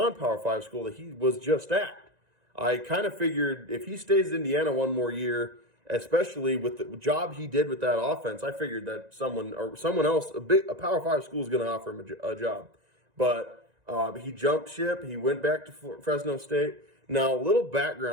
5 school that he was just at. I kind of figured if he stays in Indiana one more year, especially with the job he did with that offense, I figured that someone else, a Power 5 school is going to offer him a job. But he jumped ship. He went back to Fresno State. Now, a little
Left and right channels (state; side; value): late; left; 1.9 ms